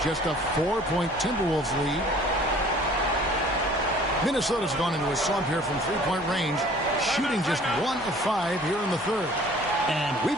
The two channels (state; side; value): normal; both; correlation 0.51